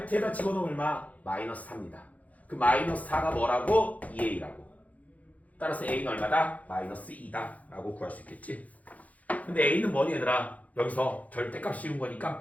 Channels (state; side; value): late; right; 0.073 ms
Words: 집어넣으면 얼마? 마이너스 4입니다. 그 마이너스 4가 뭐라고? 2a라고. 따라서 a는 얼마다? 마이너스 2다 라고 구할 수 있겠지. 근데 a는 뭐니 얘들아? 여기서 절대값 씌운 거니까